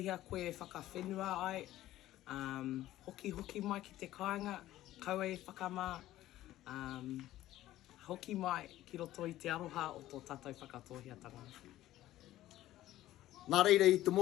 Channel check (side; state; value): right; quieter; 14.6 dB